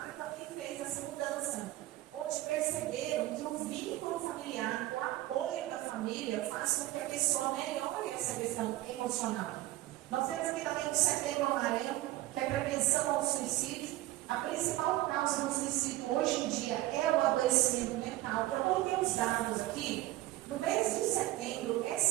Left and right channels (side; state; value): left; quieter; 16.7 dB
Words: que fez essa mudança, onde perceberam que o vínculo familiar, o apoio da família, faz com que a pessoa melhore essa questão emocional. Nós temos aqui também o Setembro Amarelo, que é a prevenção ao suicídio. A principal causa do suicídio hoje em dia é o adoecimento mental. Eu coloquei os dados aqui. No mês de setembro,